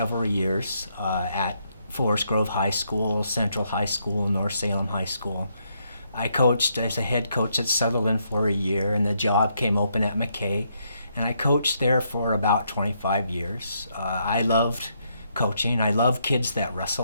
years at Forest Grove High School, Central High School, North Salem High School. I coached as a head coach at Sutherland for a year, and the job came open at McKay, and I coached there for about 25 years. I loved coaching. I love kids that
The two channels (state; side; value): inverted; both; correlation -0.76